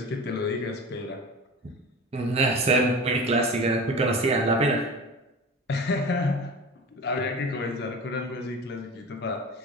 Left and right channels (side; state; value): both; normal; correlation 0.33